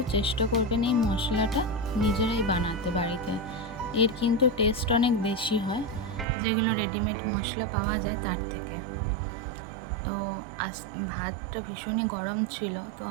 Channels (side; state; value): left; drops out; at 6.2 s